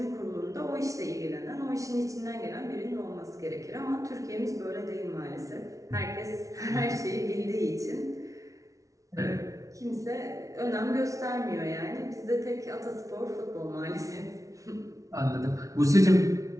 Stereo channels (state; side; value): late; left; 0.16 ms